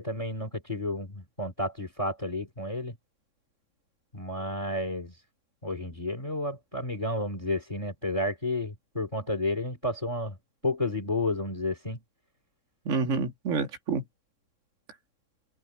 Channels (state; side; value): late; left; 3.6 ms